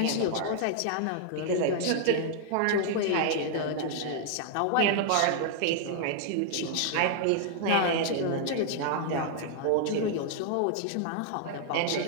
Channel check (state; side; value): different; both; correlation -0.01